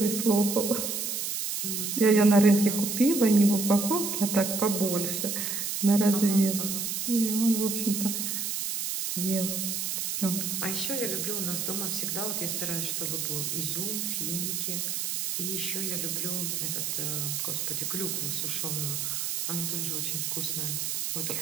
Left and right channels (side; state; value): right; noise; hiss, 2 dB below the sound